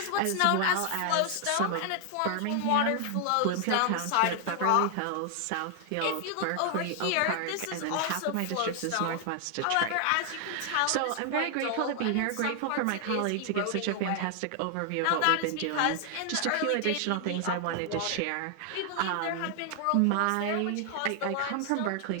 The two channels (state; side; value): different; both; correlation 0.00